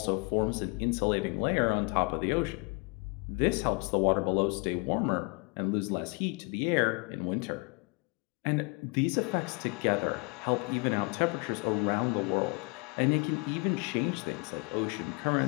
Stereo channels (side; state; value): right; quieter; 30.7 dB